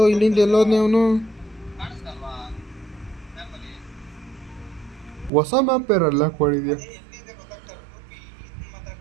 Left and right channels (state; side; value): drops out; left; at 5.3 s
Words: ಇಲ್ಲಿಂದ ಎಲ್ಲೋದ್ನೇ ಅವನು? ಹೊಸ ಮ್ಯಾಪ್ ಬೇರಲ್ಲ ಕೊಡಿದ್ಯಾ?